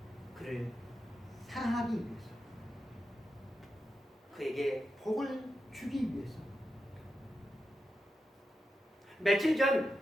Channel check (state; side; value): normal; both; correlation 0.89